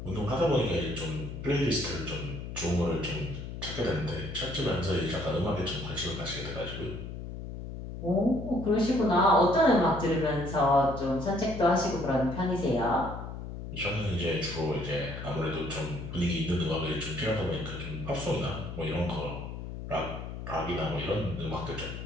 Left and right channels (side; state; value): left; noise; hum, 8 dB below the sound